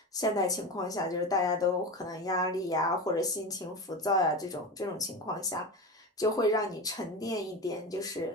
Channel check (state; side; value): normal; both; correlation 0.25